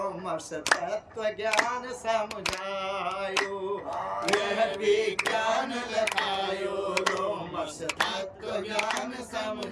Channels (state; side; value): identical; both; correlation 1.00